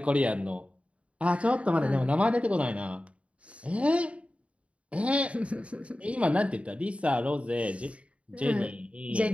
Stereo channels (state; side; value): late; left; 0.063 ms